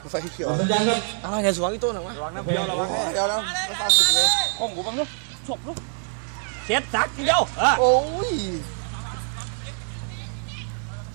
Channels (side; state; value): left; silent; 62 dB below the other